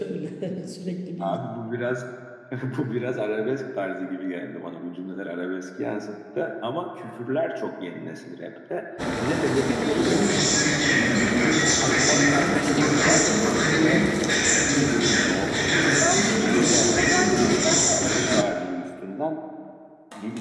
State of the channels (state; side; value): identical; both; correlation 1.00